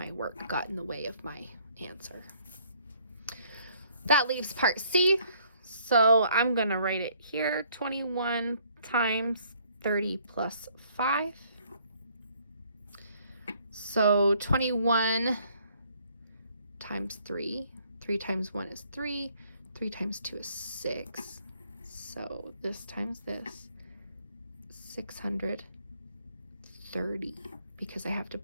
work got in the way of my answer. That leaves part C. So I'm going to write it here. 21 times 30 plus 5. So 21 times 3. 3 times 1 is 3. 3 times 2 is 6. So this times this, 630, because I have to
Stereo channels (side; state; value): both; inverted; correlation -0.63